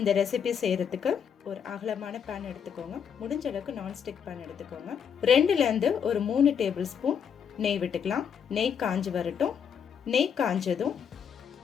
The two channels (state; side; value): quieter; right; 7.5 dB